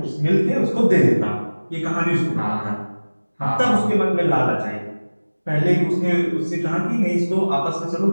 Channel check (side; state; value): both; inverted; correlation -1.00